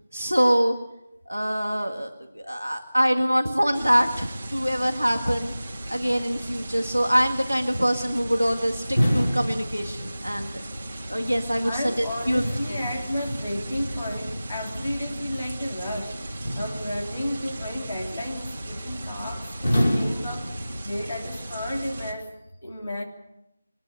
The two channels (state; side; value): inverted; both; correlation -0.97